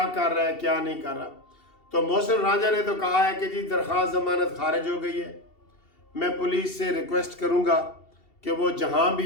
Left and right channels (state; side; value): late; right; 2.7 ms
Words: کر رہا ہے، کیا نہیں کر رہا۔ تو محسن رانجھا نے تو کہا ہے کہ جی درخواست ضمانت خارج ہو گئی ہے، میں پولیس سے ریکویسٹ کروں گا کہ وہ جہاں